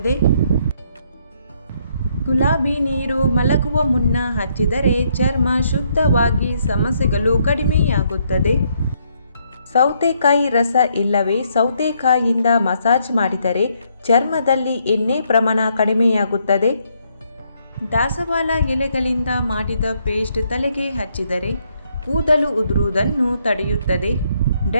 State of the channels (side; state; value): both; inverted; correlation -0.72